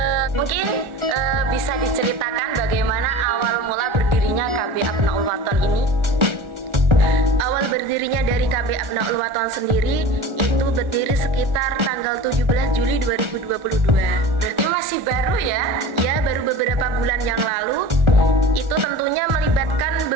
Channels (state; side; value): late; left; 1.4 ms